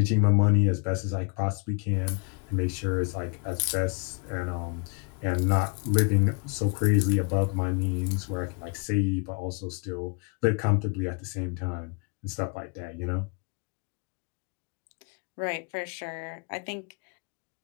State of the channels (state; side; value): quieter; right; 34.9 dB